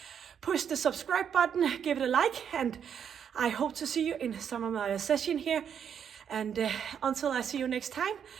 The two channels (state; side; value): quieter; left; 8.1 dB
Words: push the subscribe button, give it a like, and I hope to see you in some of my session here. And until I see you next time,